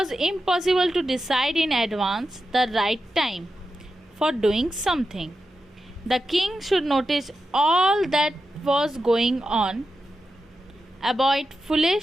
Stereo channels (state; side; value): normal; both; correlation 0.89